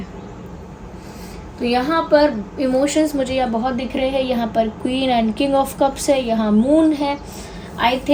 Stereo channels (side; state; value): both; identical; correlation 1.00